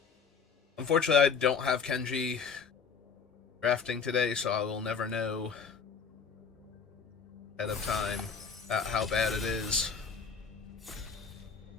Unfortunately, I don't have Kenji drafting today, so I will never know ahead of time how bad it is.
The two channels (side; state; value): right; quieter; 5.8 dB